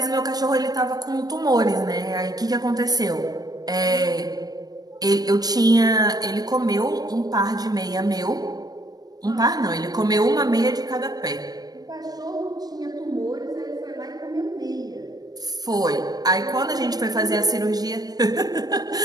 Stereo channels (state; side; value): late; left; 0.19 ms